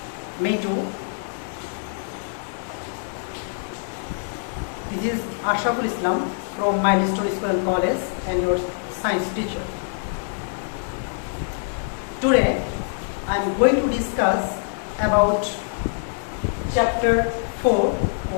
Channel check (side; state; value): right; silent; 62 dB below the other